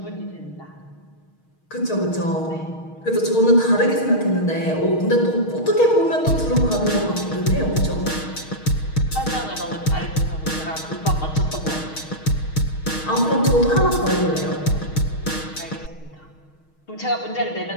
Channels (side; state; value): right; late; 6.4 ms